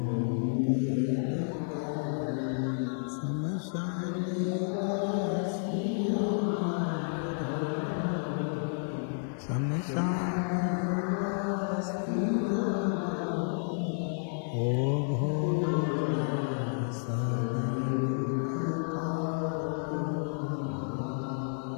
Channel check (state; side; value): silent; right; 57 dB below the other